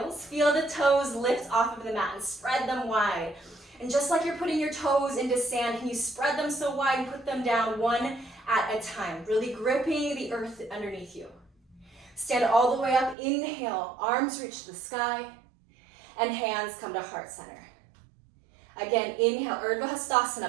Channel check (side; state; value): left; drops out; at 13.2 s